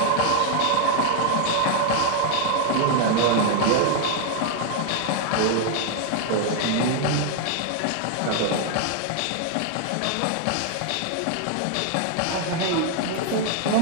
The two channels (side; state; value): both; different; correlation 0.00